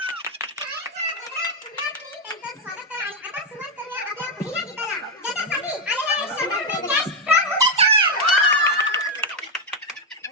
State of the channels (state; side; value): normal; both; correlation 0.03